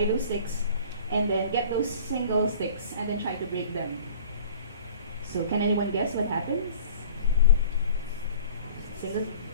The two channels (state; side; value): inverted; both; correlation -0.47